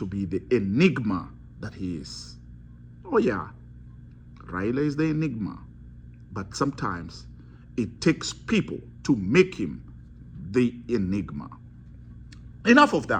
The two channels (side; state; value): both; identical; correlation 1.00